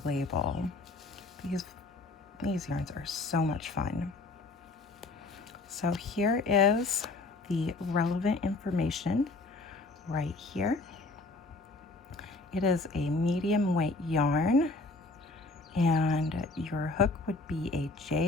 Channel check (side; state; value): right; quieter; 3.3 dB